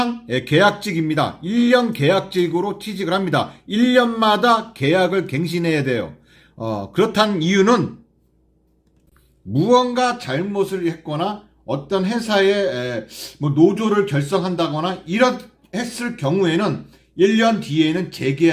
계약직입니다. 1년 계약직으로 취직을 합니다. 1년마다 계약을 갱신해야 돼요. 그렇다는 이유는 무언가 잘못을 했거나 어떤 회사에 뭐 노조를 결성한다거나 이런 했을 경우에는 1년 뒤에는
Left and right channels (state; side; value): identical; both; correlation 1.00